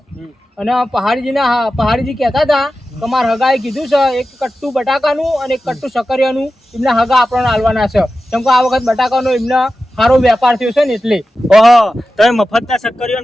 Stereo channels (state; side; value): normal; both; correlation 0.93